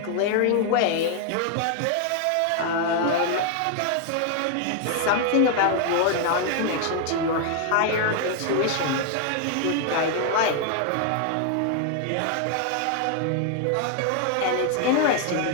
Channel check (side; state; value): both; different; correlation 0.00